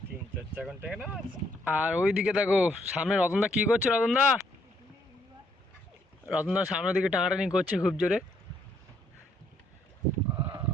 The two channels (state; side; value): normal; both; correlation 0.70